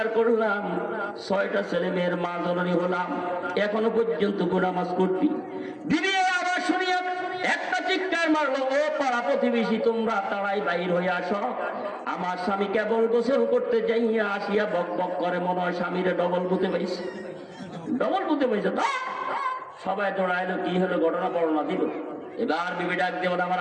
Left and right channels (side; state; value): both; identical; correlation 1.00